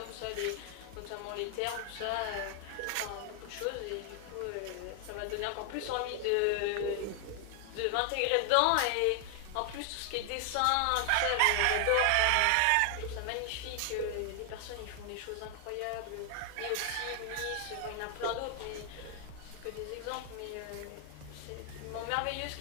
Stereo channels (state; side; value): different; both; correlation 0.00